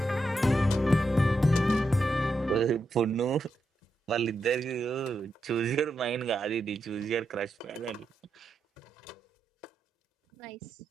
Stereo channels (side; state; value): both; normal; correlation 0.84